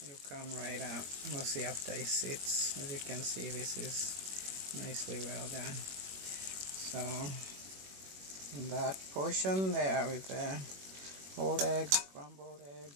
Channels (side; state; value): left; late; 21 ms